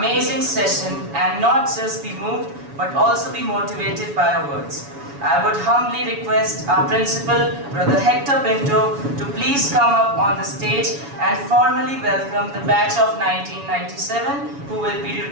session and not just be moved but also be motivated by our words. I would humbly request our principal, Brother Hector Pinto, to please come up on the stage and formally welcome the batch of 1997 who will be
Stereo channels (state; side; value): late; left; 7.1 ms